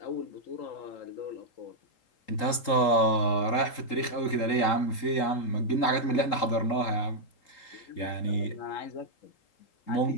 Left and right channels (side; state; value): right; late; 3.8 ms